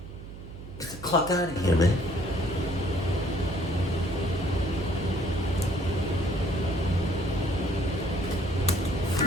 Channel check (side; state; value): right; noise; hum, 13 dB below the sound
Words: Get the clock out of here, man.